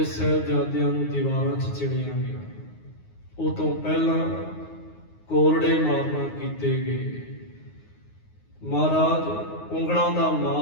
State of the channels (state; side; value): late; right; 9.5 ms